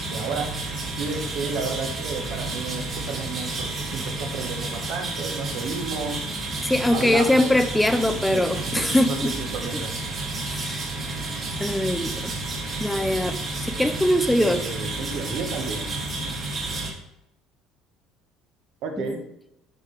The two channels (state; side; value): normal; both; correlation 0.80